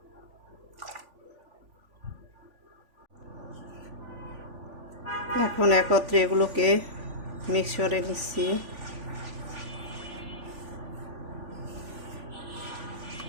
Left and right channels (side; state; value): left; late; 3.5 ms